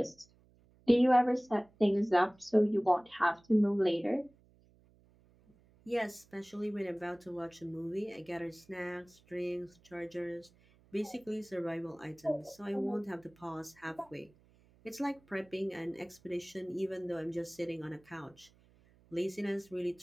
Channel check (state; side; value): noise; right; hum, 30 dB below the sound